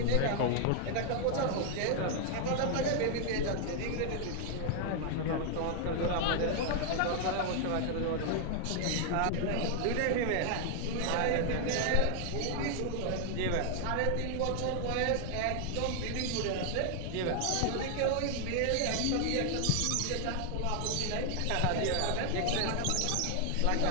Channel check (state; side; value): different; both; correlation 0.00